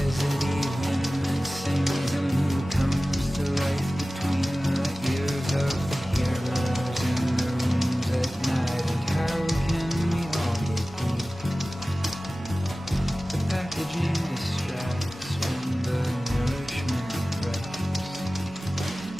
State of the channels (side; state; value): both; normal; correlation 0.97